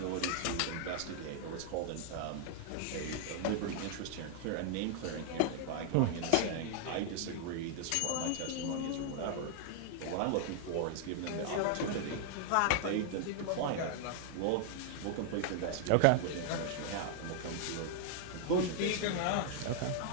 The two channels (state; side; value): different; both; correlation -0.01